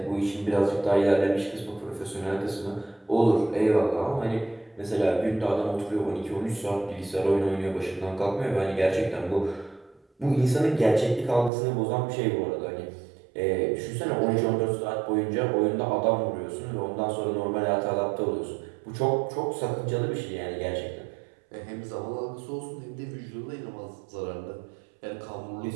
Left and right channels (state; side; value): drops out; left; at 11.5 s